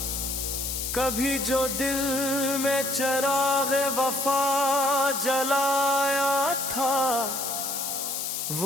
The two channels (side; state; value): left; noise; hiss, 3 dB below the sound